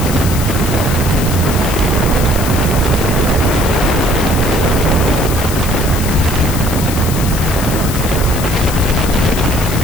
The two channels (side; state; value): left; noise; hiss, 8 dB below the sound